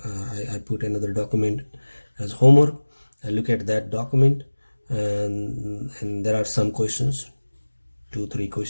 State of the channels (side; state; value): both; inverted; correlation -1.00